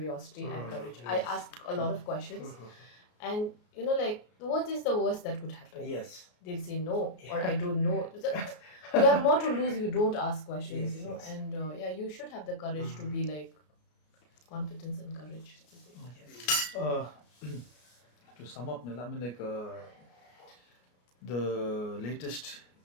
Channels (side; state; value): right; late; 33 ms